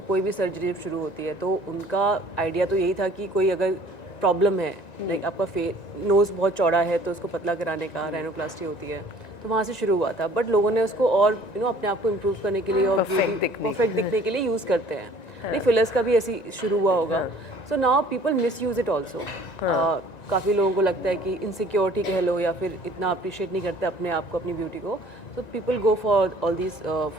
कोई भी सर्जरी जब शुरू होती है तो उनका आइडिया तो यही था कि कोई अगर प्रॉब्लम है, लाइक आपका नोज़ बहुत चौड़ा है तो उसको पतला कराने का रैनोप्लास्टी होती है, तो वहाँ से शुरू हुआ था। बट लोगों ने उसको और अपने आप को इम्प्रूव करने के लिए और परफेक्ट दिखने के लिए यूज़ करते हैं। नहीं, फिलर्स का भी ऐसी शुरू हुआ होगा। So now people miss use it also. काफ़ी लोगों को लगता है कि इनसिक्योरिटी कह लो, या फिर इतना अप्रिशिएट नहीं करते अपने आप को, अपनी ब्यूटी को। So people go for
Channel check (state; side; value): late; right; 1.9 ms